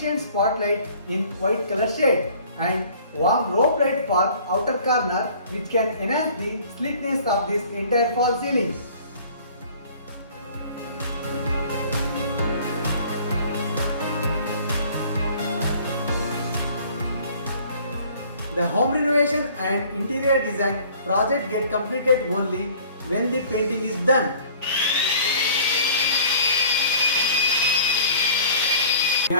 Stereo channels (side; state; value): both; inverted; correlation -0.51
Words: spotlight in white color shade and warm rope light for outer corner, which can enhance the sleekness of this entire fall ceiling. The home renovation and interior design project get completed only when the painting is done. We